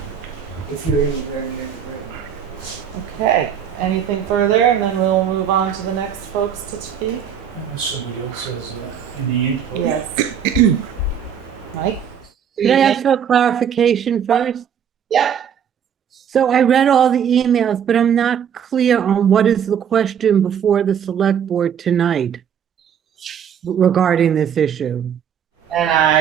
If you're anywhere near the river. Okay. anything further, and then we'll move on to the next folks to speak? Unless somebody else has any input. Yes. Mike? Can I ask for a clarification first? Yep. So I read all the emails, but I'm not clear on what is the question before the select board tonight regarding this issue. And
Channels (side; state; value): left; quieter; 8.3 dB